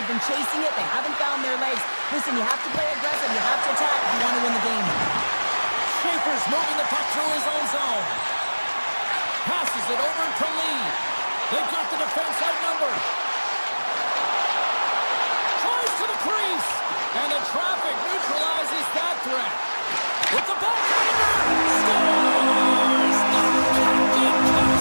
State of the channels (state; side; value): inverted; both; correlation -1.00